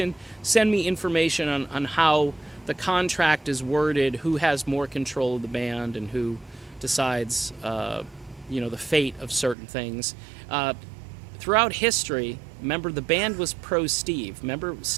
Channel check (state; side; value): drops out; left; at 9.6 s